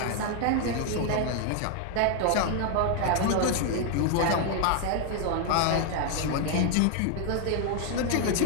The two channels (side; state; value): both; different; correlation 0.00